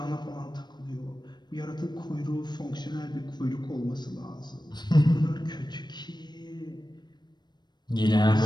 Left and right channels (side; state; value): right; late; 0.21 ms